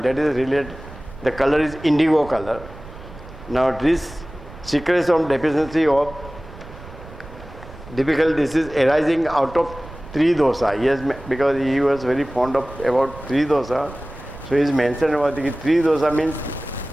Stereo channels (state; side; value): noise; right; rumble, 16 dB below the sound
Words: that is related, the color is indigo color. Now this secretes on deficiency of difficult disease arising out of three dosa. Yes, because he was very fond of about three dosa. So he is mentioned about the three dosa means